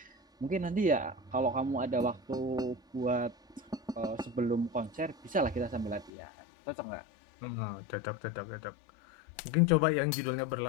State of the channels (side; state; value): right; drops out; at 6.1 s